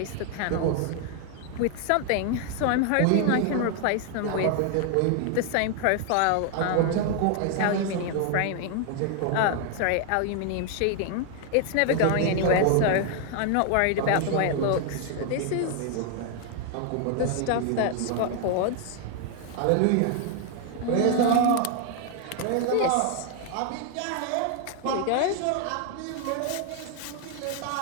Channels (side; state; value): both; different; correlation 0.00